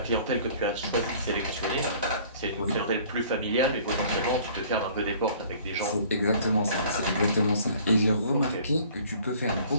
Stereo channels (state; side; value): inverted; both; correlation -0.52